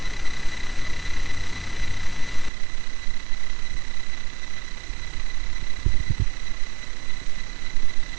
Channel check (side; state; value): left; drops out; at 2.5 s